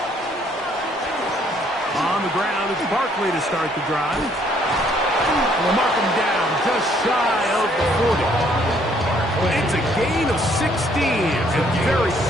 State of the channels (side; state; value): both; normal; correlation 0.65